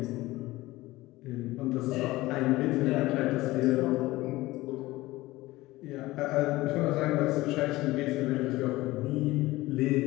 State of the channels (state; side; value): quieter; right; 18.6 dB